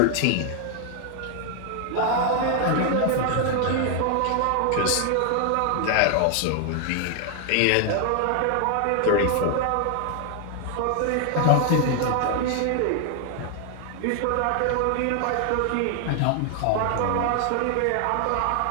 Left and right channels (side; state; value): both; different; correlation 0.00